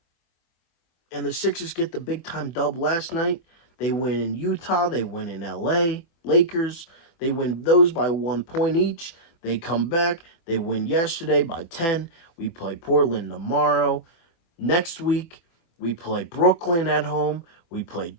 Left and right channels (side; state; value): right; late; 24 ms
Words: And the Sixers get the big time dub last night. They win in Utah. They win in LA. Lakers. They win those by 1 point each. They come back. They win yesterday by 10. We play Portland tomorrow. Next week, we play Brooklyn at home. We play